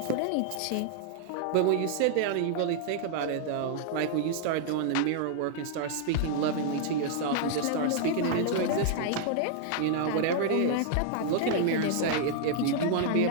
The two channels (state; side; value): different; both; correlation -0.01